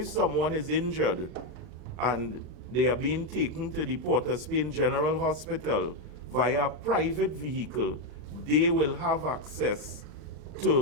someone is injured and they are being taken to the Port of Spain General Hospital via a private vehicle, they will have access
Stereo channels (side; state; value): left; late; 40 ms